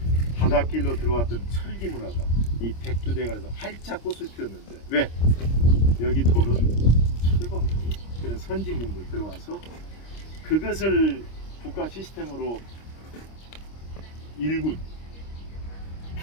바닷길로 들어왔던 철기 문화가 이 백두대간에서 활짝 꽃을 피웠는데 왜? 여기 돌은 철광석, 그런 선진 문물 들어와서 그것을 국가 시스템으로 일군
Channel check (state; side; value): late; right; 26 ms